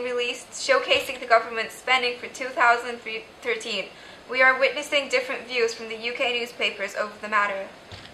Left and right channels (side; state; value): both; identical; correlation 1.00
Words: released showcasing the government's spending for 2013. We are witnessing different views from the UK newspapers over the matter.